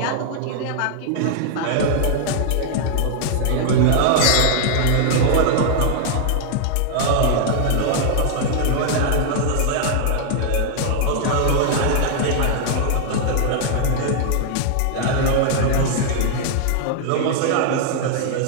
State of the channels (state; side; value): different; both; correlation -0.01